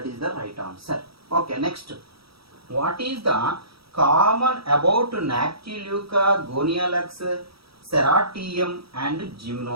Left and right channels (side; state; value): left; late; 0.76 ms